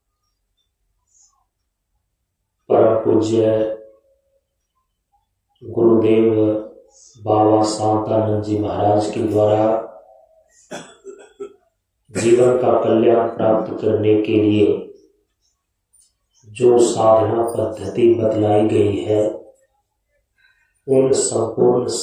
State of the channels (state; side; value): identical; both; correlation 1.00